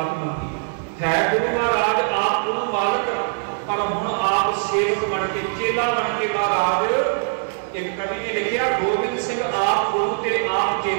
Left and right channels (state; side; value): silent; left; digital silence